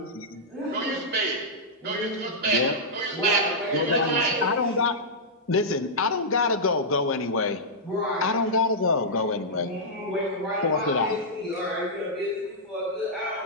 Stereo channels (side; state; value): both; normal; correlation -0.10